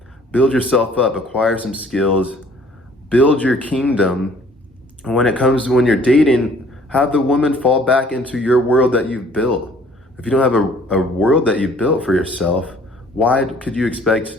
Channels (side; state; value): both; normal; correlation 0.56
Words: Build yourself up, acquire some skills, build your kingdom. And when you're dating, have the woman fall back into your world that you've built. If you don't have a world that you've built for yourself, why could you expect